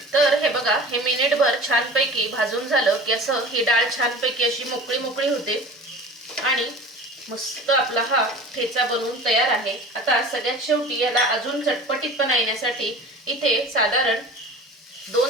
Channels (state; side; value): normal; both; correlation 0.39